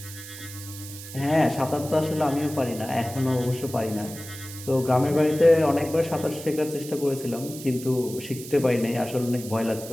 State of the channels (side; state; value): right; noise; hiss, 13 dB below the sound